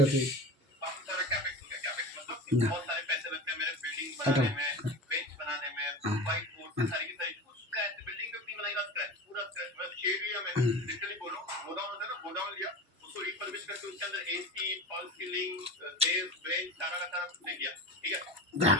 আছে। না এটা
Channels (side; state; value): both; normal; correlation 0.30